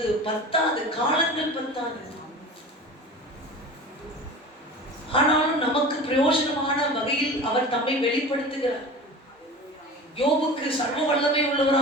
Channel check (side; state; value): both; normal; correlation 0.35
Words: பத்தாது, காலங்கள் பத்தாது. ஆனாலும் நமக்கு பிரயோஜனமான வகையில் அவர் தம்மை வெளிப்படுத்துகிறார். யோபுக்கு சர்வ வல்லமை